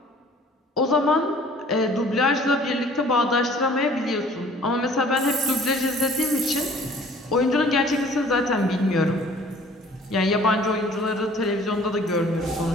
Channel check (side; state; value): both; normal; correlation 0.53